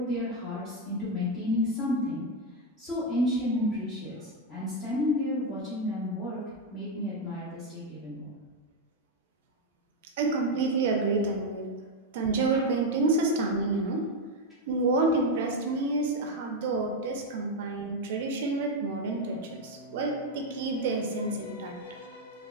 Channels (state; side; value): normal; both; correlation 0.05